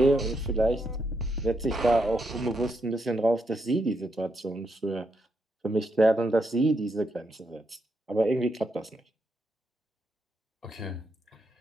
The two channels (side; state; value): both; normal; correlation 0.80